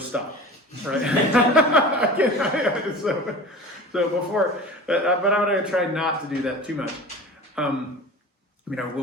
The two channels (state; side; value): normal; both; correlation 0.37